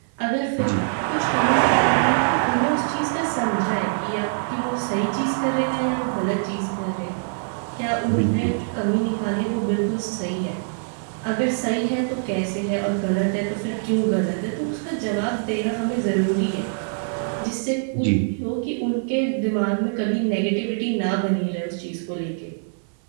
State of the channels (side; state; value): left; silent; 55 dB below the other